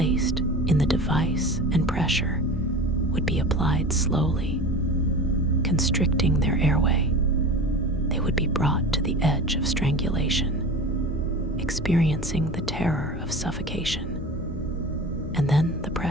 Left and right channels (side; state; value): both; normal; correlation 0.34